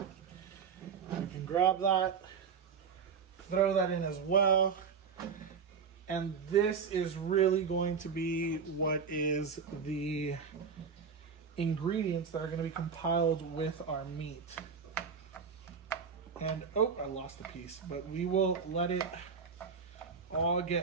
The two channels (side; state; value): left; quieter; 6.0 dB